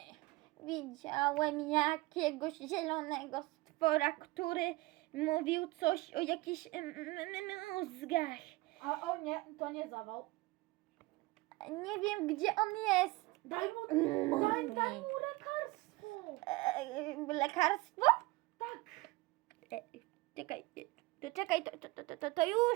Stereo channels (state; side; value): quieter; left; 21.6 dB